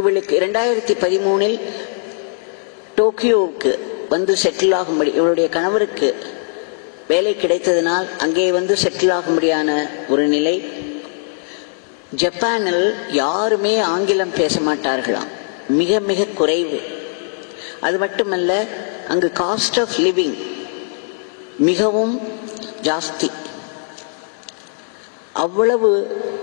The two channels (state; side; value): silent; right; digital silence